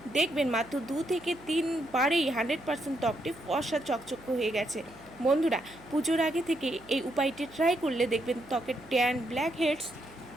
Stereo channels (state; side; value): noise; right; hum, 23 dB below the sound